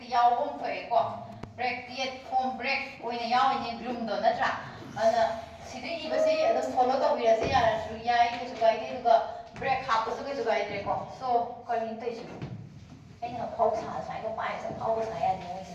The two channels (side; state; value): both; identical; correlation 1.00